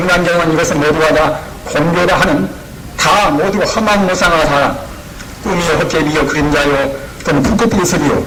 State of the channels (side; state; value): both; identical; correlation 1.00